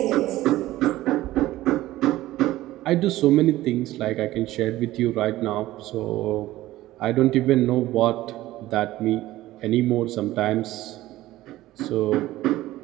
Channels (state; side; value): quieter; left; 16.1 dB